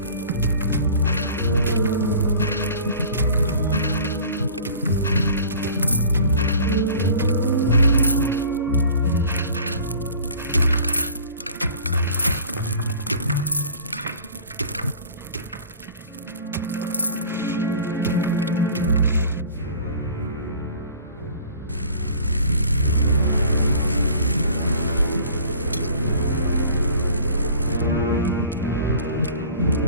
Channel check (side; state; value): both; inverted; correlation -0.45